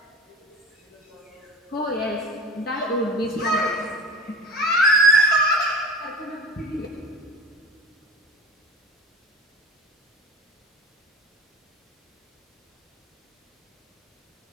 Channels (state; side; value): normal; both; correlation 0.35